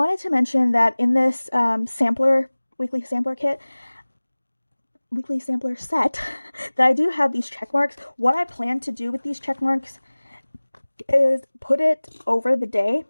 to mention that in this weekly sampler set that I do have these check marks. What I plan to do with these check marks is put it over the day.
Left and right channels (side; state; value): both; inverted; correlation -1.00